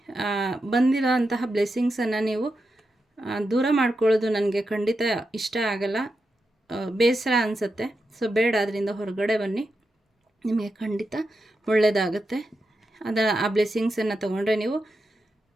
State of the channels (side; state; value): both; normal; correlation 0.87